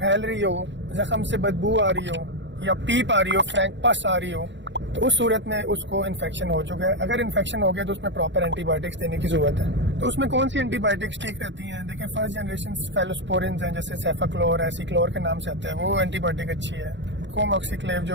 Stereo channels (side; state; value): left; late; 0.53 ms